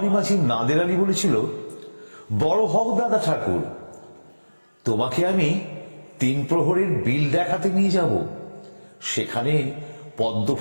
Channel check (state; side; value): inverted; both; correlation -1.00